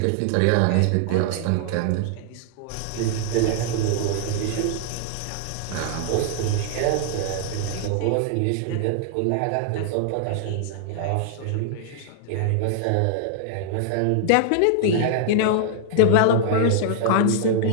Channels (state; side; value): different; both; correlation -0.01